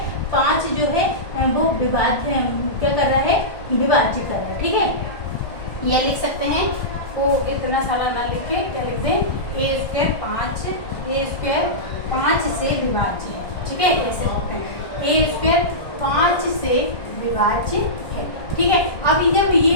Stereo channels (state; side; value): late; right; 1.5 ms